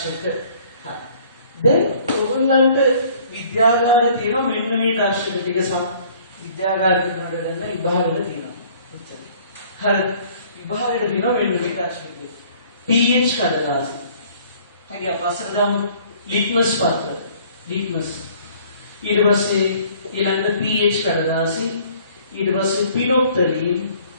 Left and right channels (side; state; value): both; inverted; correlation -0.55